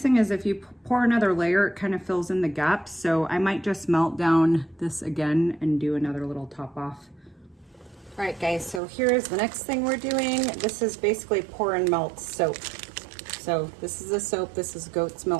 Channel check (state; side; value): drops out; left; at 8.8 s